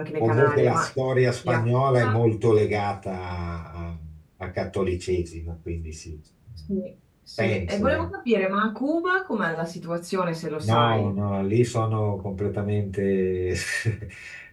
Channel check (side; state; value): both; identical; correlation 1.00